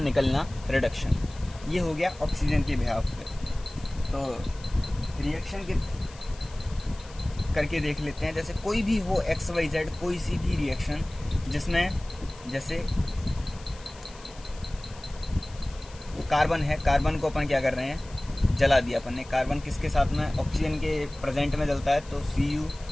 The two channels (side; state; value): left; noise; hiss, 21 dB below the sound